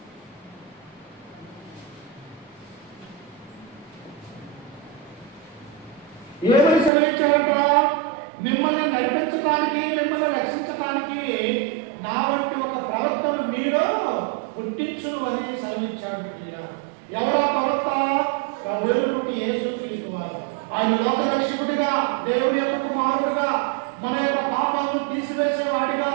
ఏమని సెలవిచ్చాడంట? మిమ్మల్ని నడిపించడానికి, మిమ్మల్ని రక్షించడానికి నా వంటి ఒక ప్రవక్తను మీలో పుట్టించును అని సెలవిచ్చాడు. ఎవరా ప్రవక్త? ప్రభువుని యేసుక్రీస్తు వారు. ఆయన లోక రక్షకుడిగా, దేవుని యొక్క కుమారుడిగా, మన యొక్క పాపాలను తీసివేసేవాడిగా,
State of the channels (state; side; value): drops out; left; at 6.9 s